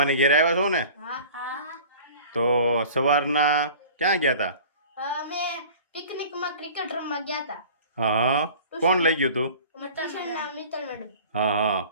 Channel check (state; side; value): inverted; both; correlation -0.43